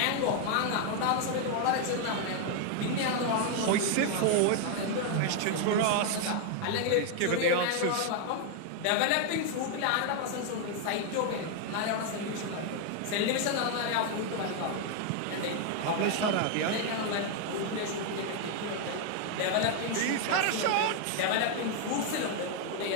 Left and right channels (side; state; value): both; different; correlation 0.00